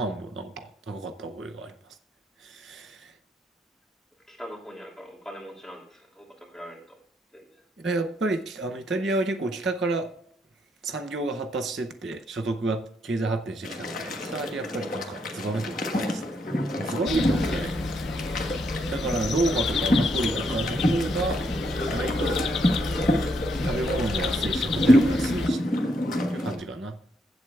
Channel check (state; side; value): normal; both; correlation 0.75